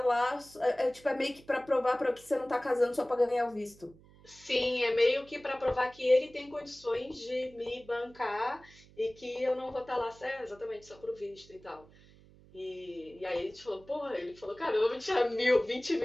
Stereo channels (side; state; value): right; noise; hum, 25 dB below the sound